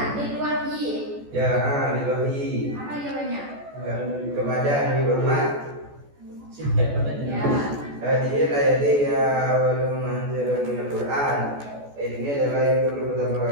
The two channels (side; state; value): left; late; 14 ms